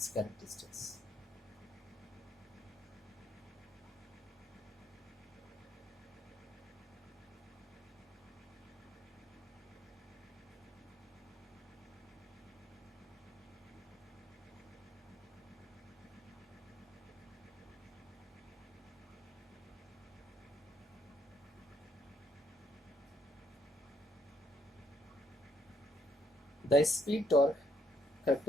characteristics. The speed torque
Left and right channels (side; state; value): both; normal; correlation 0.70